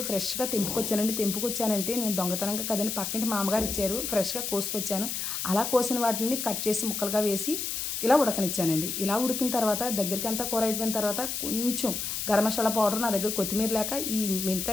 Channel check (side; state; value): left; noise; hiss, 3 dB below the sound